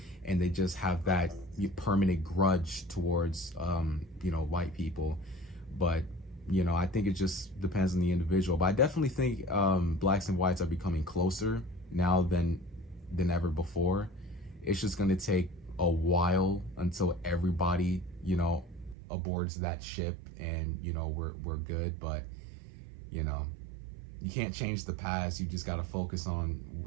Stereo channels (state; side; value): drops out; left; at 18.9 s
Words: and they just have that permanent grudge towards white people. But I think it just depends on the individual. But I definitely think blacks and whites are becoming closer now than ever before. It's just going to take a while until everybody aboards that ship, and we're good. But you can't change the past. You just got to focus on